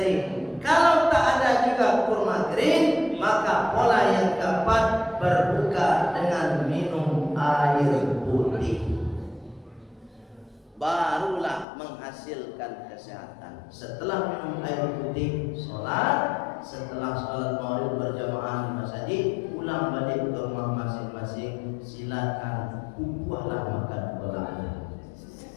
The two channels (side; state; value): right; drops out; at 11.7 s